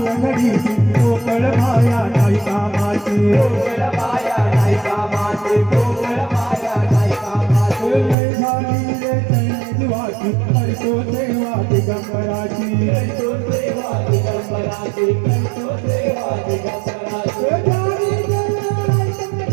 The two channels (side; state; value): left; drops out; at 8.2 s